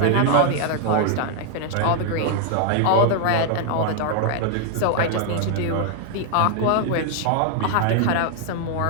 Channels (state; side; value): different; both; correlation 0.00